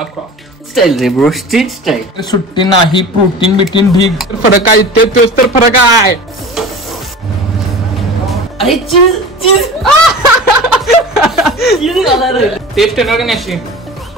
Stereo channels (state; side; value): normal; both; correlation 0.36